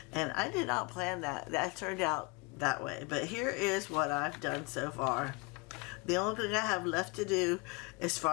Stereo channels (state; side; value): quieter; right; 27.8 dB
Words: And I did not plan that. That turned out that way. But here is what I've done so far. The only thing I have left to do, as